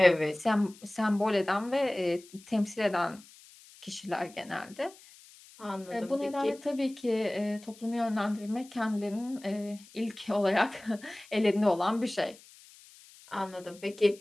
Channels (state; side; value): noise; left; hiss, 23 dB below the sound